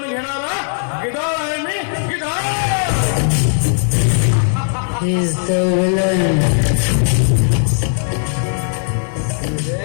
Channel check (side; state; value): right; silent; 55 dB below the other